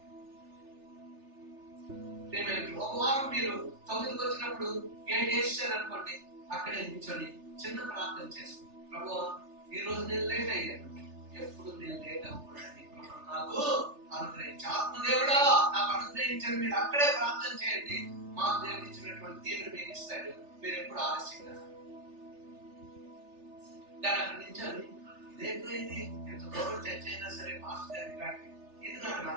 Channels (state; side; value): late; left; 3.3 ms